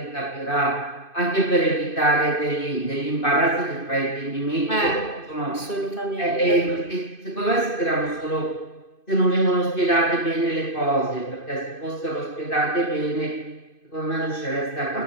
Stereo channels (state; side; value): late; right; 2.5 ms